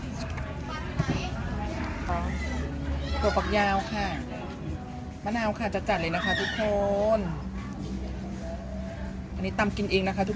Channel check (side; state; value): both; identical; correlation 1.00